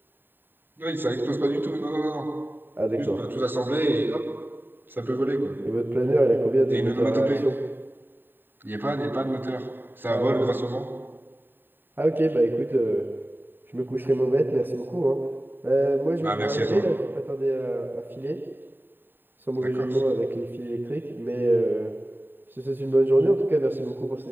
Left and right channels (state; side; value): late; left; 0.095 ms